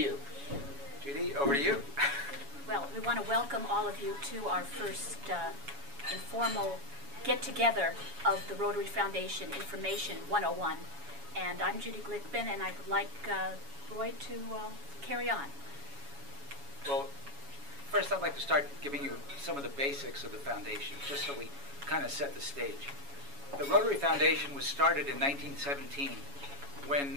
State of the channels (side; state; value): left; late; 7.1 ms